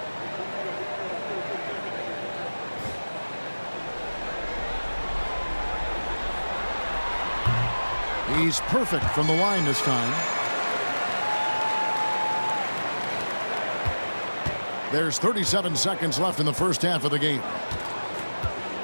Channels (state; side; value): inverted; both; correlation -1.00